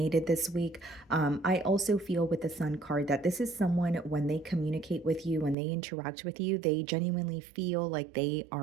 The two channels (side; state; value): left; drops out; at 5.6 s